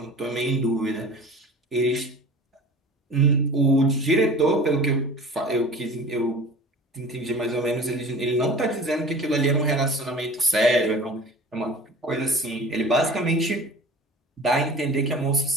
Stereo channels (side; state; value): both; normal; correlation 0.40